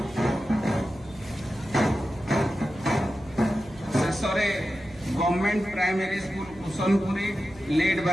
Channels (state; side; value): noise; right; hum, 21 dB below the sound